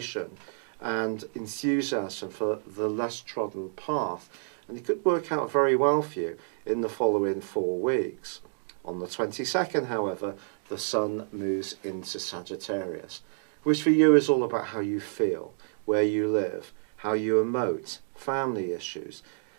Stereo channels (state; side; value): silent; left; digital silence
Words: and enthusiasm for the less trodden path. And it could work out very well for you in the following 4 weeks. On the 22nd, however, the Sun moves into Sagittarius, which for you is all about how you feel, where you live, how you emote, family issues,